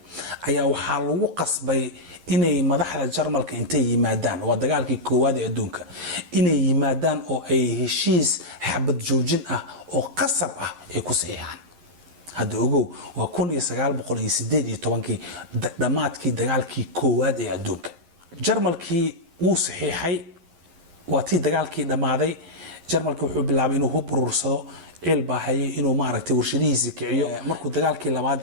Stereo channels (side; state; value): left; late; 11 ms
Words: ayaa waxaa lagu qasbay inay madaxda Jarmalka intay yimaadaan waa dagaalkii koowaad ee adduunka inay yimaadaan oo ay heshiis xabad joojin ah oo qasab ah ay ku saxiixaan hadda ogow waa 1918 dhamaadkii dagaalkii koowaad ee adduunka Jarmalkii uu saxiixay waa tii dagaalkii dhamaaday Jarmalku wuxuu bilaabay inuu hub urursado cilbaahay inuu maaragtay warshadihiisa kiciyo markuu dagaalkii labaad